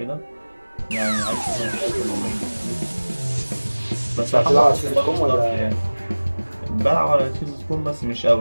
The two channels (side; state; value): both; inverted; correlation -1.00